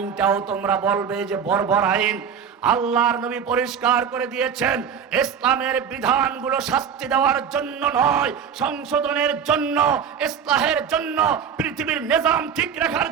তোমরা বলবে যে বর্বর আইন। আল্লাহর নবী পরিষ্কার করে দিয়েছেন, ইসলামের বিধানগুলো শাস্তি দেওয়ার জন্য নয়, সংশোধনের জন্য, ইসলাহের জন্য, পৃথিবীর নিজাম ঠিক রাখার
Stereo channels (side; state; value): left; quieter; 7.5 dB